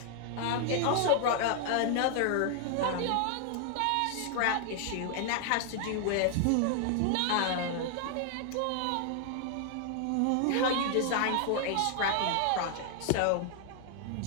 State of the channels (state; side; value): different; both; correlation 0.00